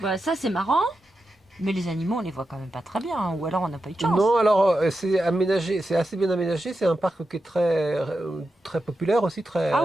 Bah, ça c'est marrant, mais les animaux on les voit quand même pas très bien, hein, ou alors on n'a pas eu de chance. Non, alors c'est aménagé, c'est assez bien aménagé. C'est un parc qui est très populaire aussi, très,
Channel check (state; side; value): normal; both; correlation 0.89